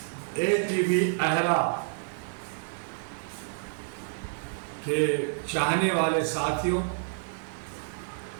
ATV अहरा के चाहने वाले साथियों,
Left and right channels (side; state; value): left; silent; digital silence